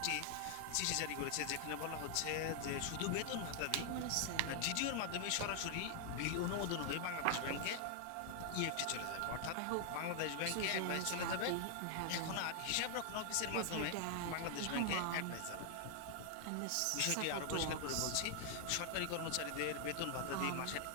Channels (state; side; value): different; both; correlation 0.00